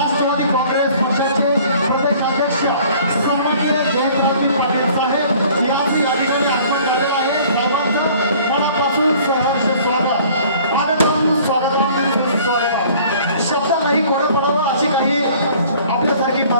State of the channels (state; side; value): inverted; both; correlation -0.52